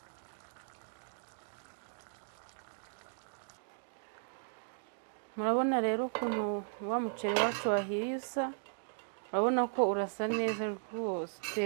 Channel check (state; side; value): silent; left; digital silence